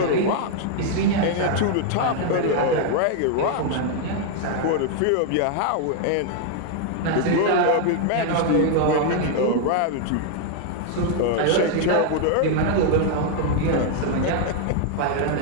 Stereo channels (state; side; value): different; both; correlation 0.00